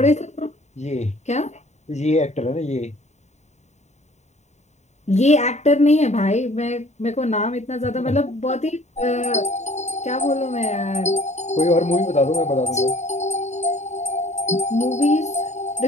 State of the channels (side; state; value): right; late; 0.33 ms